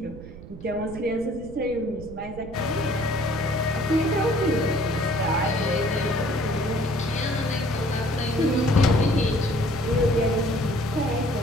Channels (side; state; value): right; noise; rumble, 14 dB below the sound